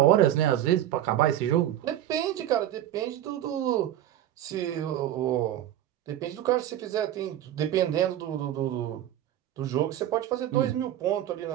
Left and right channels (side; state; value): left; quieter; 12.1 dB